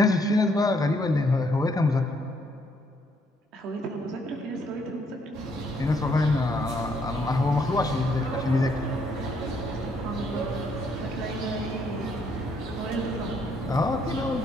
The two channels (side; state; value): both; normal; correlation 0.70